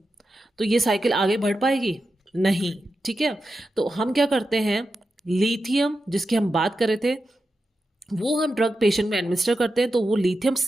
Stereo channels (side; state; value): both; normal; correlation 0.90